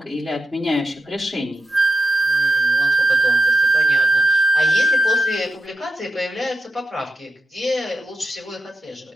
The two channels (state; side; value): normal; both; correlation 0.85